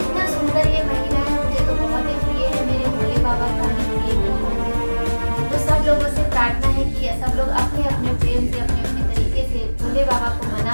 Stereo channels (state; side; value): inverted; both; correlation -1.00